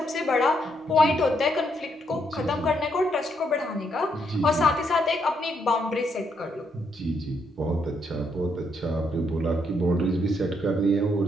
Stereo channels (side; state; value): both; normal; correlation 0.75